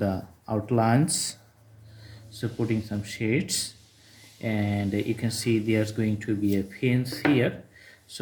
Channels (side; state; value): both; identical; correlation 1.00